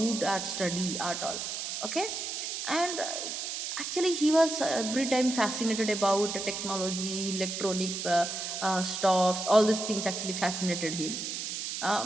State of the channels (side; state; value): right; noise; hiss, 4 dB below the sound